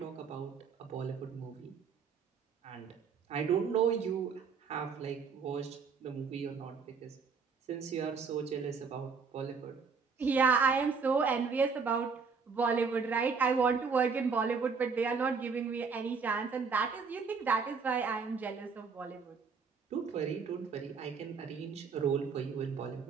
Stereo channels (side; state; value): left; quieter; 5.4 dB